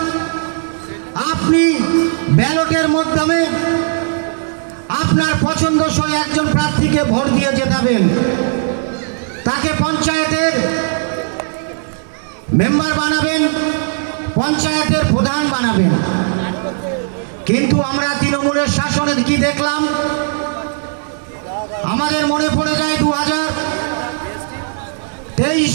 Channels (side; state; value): left; silent; 68 dB below the other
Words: আপনি ব্যালটের মাধ্যমে আপনার পছন্দসই একজন প্রার্থীকে ভোট দিয়ে জেতাবেন, তাকে পঞ্চায়েতের মেম্বার বানাবেন, পঞ্চায়েতের প্রধান বানাবেন। কিন্তু আমরা তৃণমূলের শাসনে কি দেখলাম? আমাদের মনে পড়ে যায় 2023